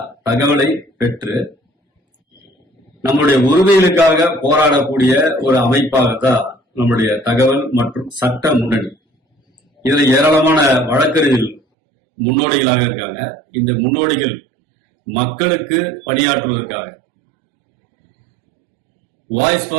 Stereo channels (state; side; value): drops out; left; at 11.6 s